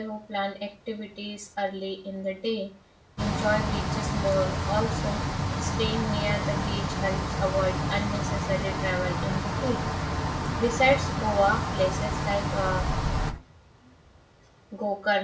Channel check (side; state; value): both; identical; correlation 1.00